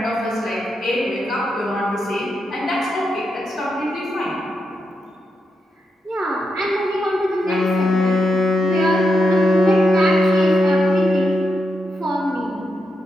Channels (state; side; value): normal; both; correlation 0.85